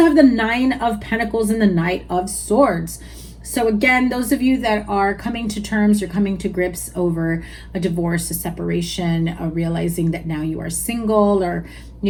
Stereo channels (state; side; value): identical; both; correlation 1.00